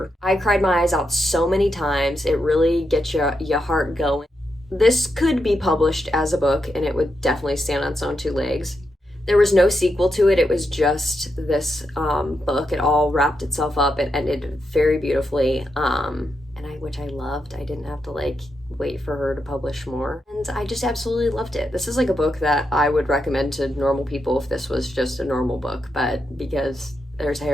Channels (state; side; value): normal; both; correlation 0.84